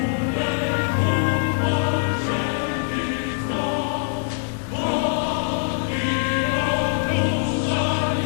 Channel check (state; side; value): silent; right; 63 dB below the other